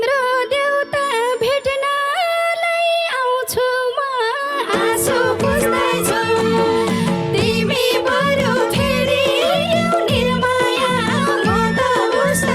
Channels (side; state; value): both; identical; correlation 1.00